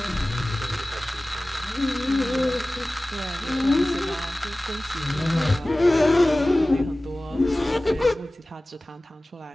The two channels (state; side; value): normal; both; correlation 0.98